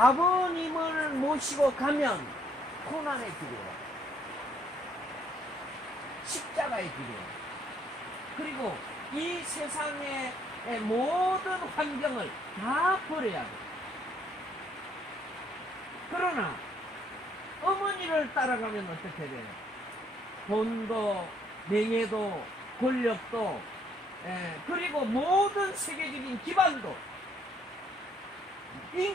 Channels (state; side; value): normal; both; correlation 0.68